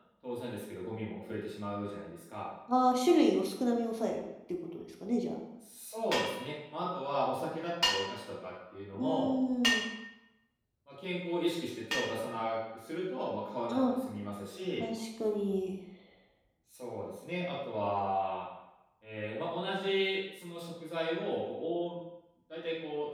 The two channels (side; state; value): both; identical; correlation 1.00